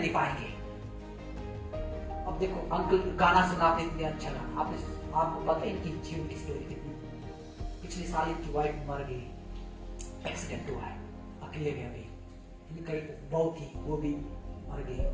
पाएंगे। अब देखो, अंकल गाना सुना आपने, इतने अच्छा लगा, आपको पता है इनकी जीवन की स्टोरी कितनी? पिछले साल इनकी वाइफ मर गई, एक्सीडेंट हुआ है, अकेले गए अभी, इनका बहू थी वो भी मर गई,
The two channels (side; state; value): both; identical; correlation 1.00